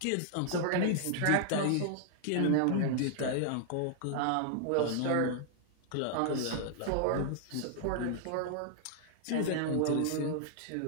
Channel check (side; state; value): both; different; correlation -0.01